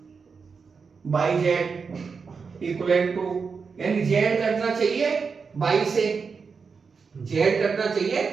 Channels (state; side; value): quieter; left; 5.3 dB